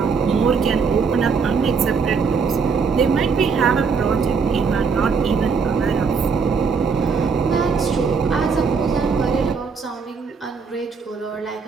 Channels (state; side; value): quieter; left; 5.3 dB